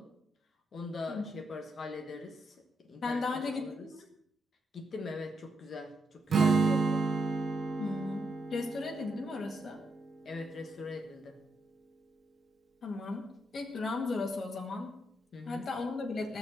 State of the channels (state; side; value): normal; both; correlation 0.80